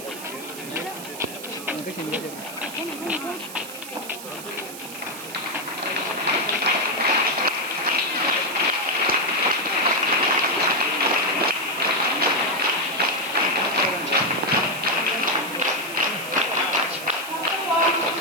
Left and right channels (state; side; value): noise; right; hiss, 12 dB below the sound